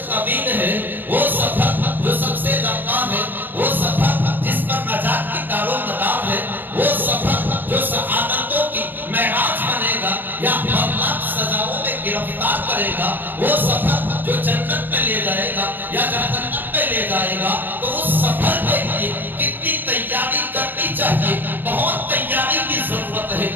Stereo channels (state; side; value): late; left; 0.092 ms